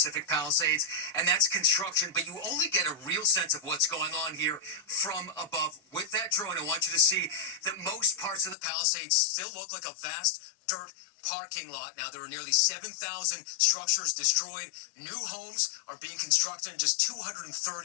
Palisades, and that's construction. But you only get a real sense of what's going on here from above. With that drone, I want you to see that most parts of the Palisades still look like a vast dirt parking lot. Now, there are nearly 7,000 structures destroyed. New homes are being constructed in just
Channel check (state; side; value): drops out; right; at 8.6 s